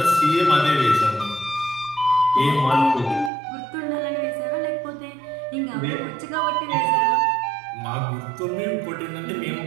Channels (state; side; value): drops out; left; at 3.3 s